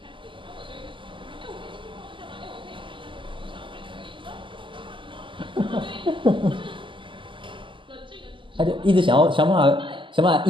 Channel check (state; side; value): late; left; 0.25 ms